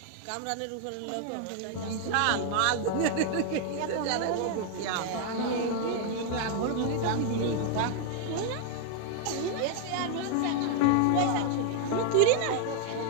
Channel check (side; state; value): both; different; correlation 0.00